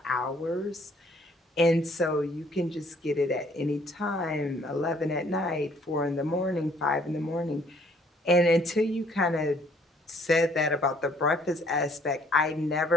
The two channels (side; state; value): both; normal; correlation 0.62